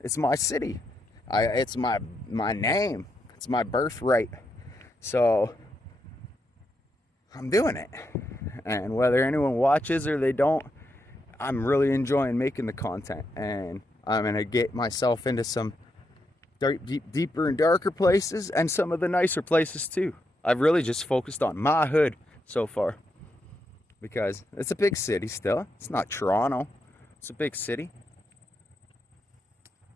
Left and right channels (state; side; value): normal; both; correlation 0.82